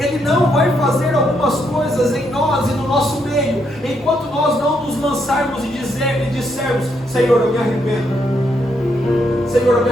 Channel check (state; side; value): normal; both; correlation 0.76